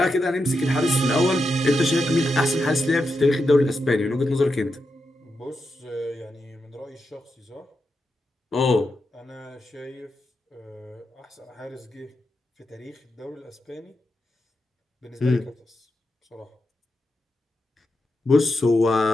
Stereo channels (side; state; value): both; normal; correlation 0.86